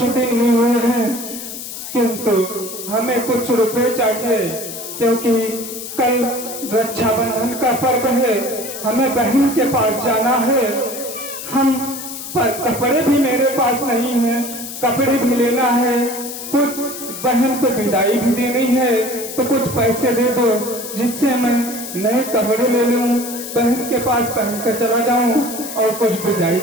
दिन ही हुए हैं, किंतु हमें कुछ रुपए चाहिए क्योंकि कल रक्षाबंधन का पर्व है, हमें बहन के पास जाना है। हम कपड़े भी मेरे पास नहीं है, कपड़े भी लेना है, कुछ बहन को विदाई भी देनी है, तो कुछ पैसे दे दो जिससे मैं नए कपड़े ले लूं, बहन के पास पहन कर चला जाऊं और कुछ विदाई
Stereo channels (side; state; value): left; noise; hiss, 9 dB below the sound